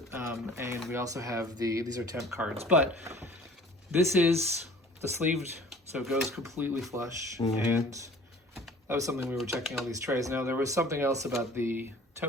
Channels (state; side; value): normal; both; correlation 0.48